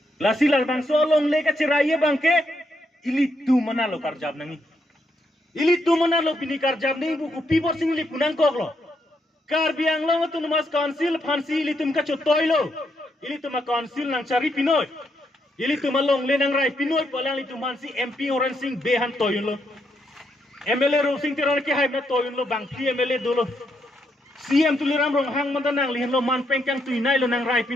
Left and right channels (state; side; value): normal; both; correlation 0.78